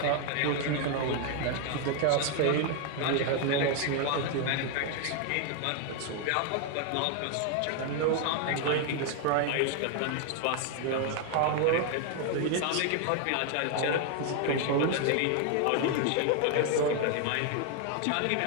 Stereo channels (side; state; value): both; different; correlation 0.01